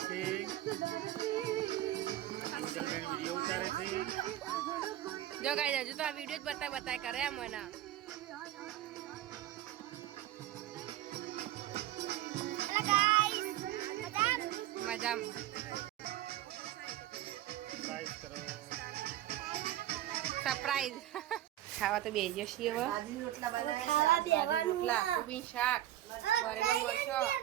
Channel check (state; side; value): quieter; left; 13.5 dB